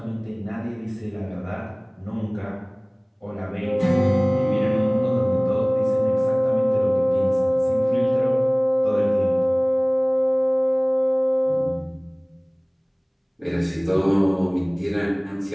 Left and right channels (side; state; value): both; identical; correlation 1.00